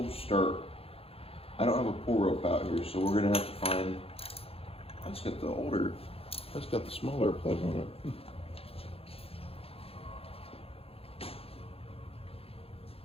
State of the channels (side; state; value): right; late; 0.28 ms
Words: start. I don't have a pull rope out here, so we're gonna have to find, that's got the smaller plug on it.